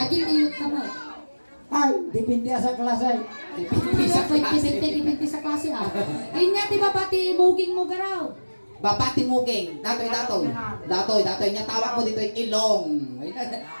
Agil nilot ka mo. Ay, dipindi sa klase. Dipindi sa klase ah. Inya di ba pati muging mo garaw? Babati mugeng, datoy. Datoy niya tawag mo dito yung ilong.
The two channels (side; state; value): both; inverted; correlation -1.00